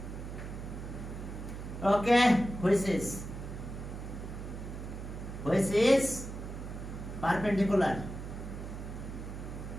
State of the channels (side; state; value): right; noise; hum, 8 dB below the sound